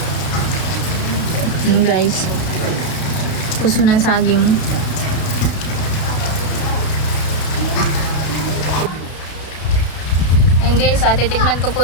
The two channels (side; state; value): right; late; 32 ms